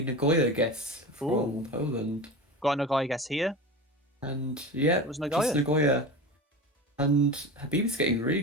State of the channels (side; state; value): both; normal; correlation 0.29